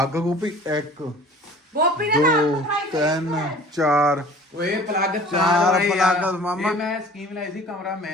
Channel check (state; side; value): normal; both; correlation 0.46